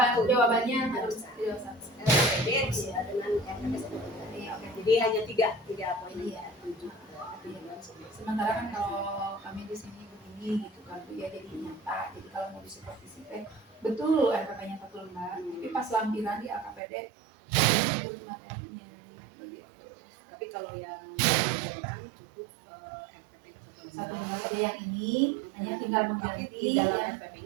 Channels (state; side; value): drops out; left; at 16.8 s